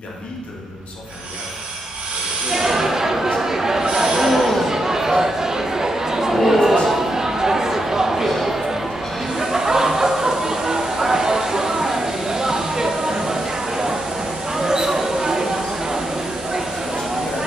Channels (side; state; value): both; normal; correlation 0.84